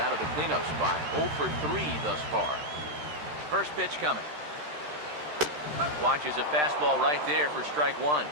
of the cleanup spot. 0 for 3 thus far. First pitch coming. Watches a fastball right there for strike 1.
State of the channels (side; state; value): left; late; 13 ms